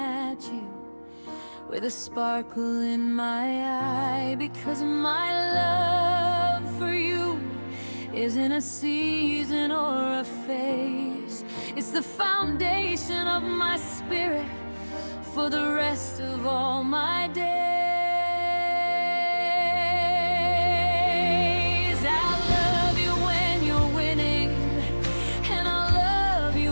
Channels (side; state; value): both; inverted; correlation -1.00